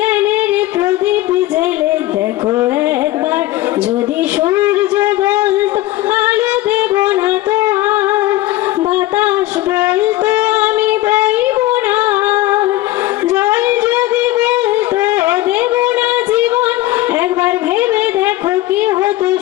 প্রদীপ জেলে দেখো একবার, যদি সূর্য বলতো আলো দেব না তো, বাতাস বলতো আমি বইব না, জল যদি বলতো দেব না জীবন, একবার ভেবে দেখো কি হতো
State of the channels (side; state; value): right; quieter; 16.6 dB